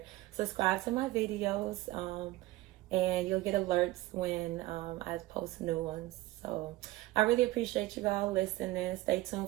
Subscribe to my videos, and you'll get alerts when I post new ones. So I really appreciate you all listening. Stay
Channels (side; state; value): left; quieter; 18.1 dB